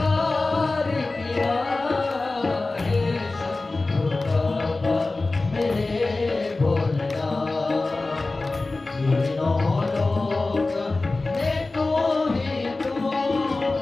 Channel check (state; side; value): quieter; right; 3.3 dB